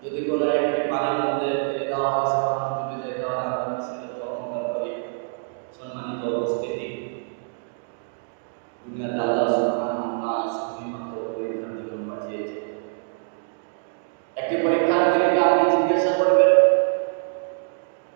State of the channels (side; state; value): left; silent; digital silence